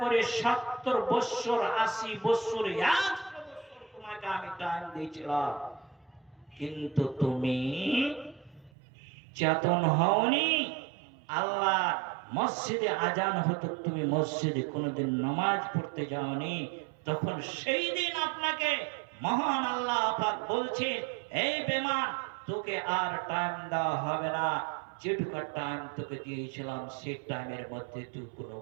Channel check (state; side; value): drops out; left; at 8.7 s